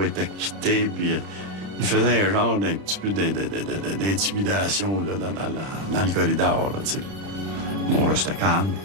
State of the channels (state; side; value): late; left; 30 ms